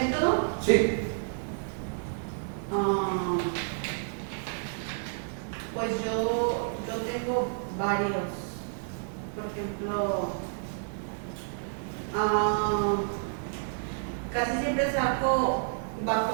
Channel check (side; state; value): left; silent; 58 dB below the other